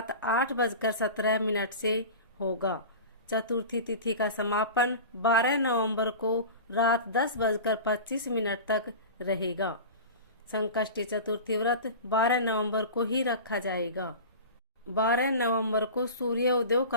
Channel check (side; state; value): both; inverted; correlation -0.33